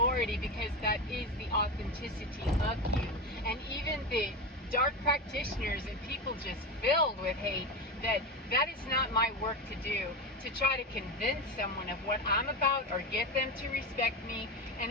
because that is the authenticity of you. And even the dark practitioners and people just filled with hate, that is not my work to do, to try to convince someone of what I'm about or get them to respect me, and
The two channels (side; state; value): both; normal; correlation 0.18